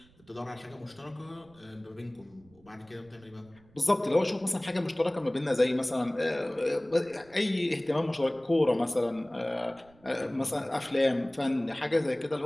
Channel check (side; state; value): right; noise; rumble, 28 dB below the sound